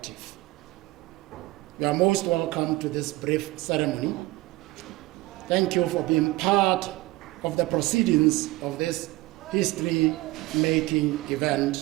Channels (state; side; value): quieter; left; 19.8 dB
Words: You are most welcome to this brief ceremony. Thank you for being part of the proceedings of this history-making